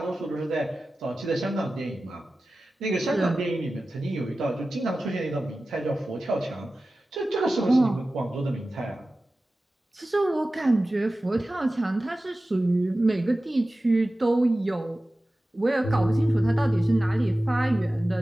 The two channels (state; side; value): normal; both; correlation 0.95